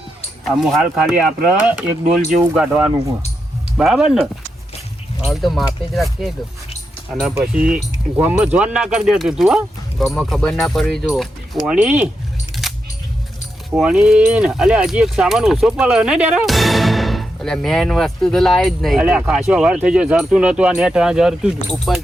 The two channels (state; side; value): normal; both; correlation 0.85